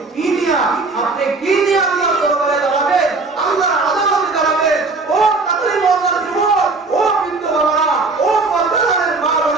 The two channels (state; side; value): quieter; left; 3.8 dB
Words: কি নিয়ে আল্লাহর দরবারে দাঁড়াবেন, আল্লাহর আদালতে দাঁড়াবেন? ও তাকলিম আল্লাহর যুবক, ও বৃদ্ধ বাবারা, ও পর্দার মা